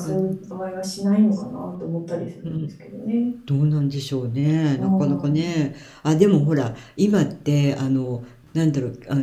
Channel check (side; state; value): both; identical; correlation 1.00